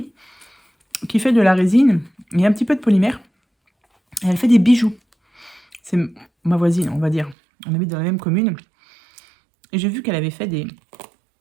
qui fait de la résine et un petit peu de polymère. Et elle fait des bijoux. C'est ma voisine, on va dire. On habite dans la même commune. Et j'ai vu qu'elle avait fait des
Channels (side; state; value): left; drops out; at 7.4 s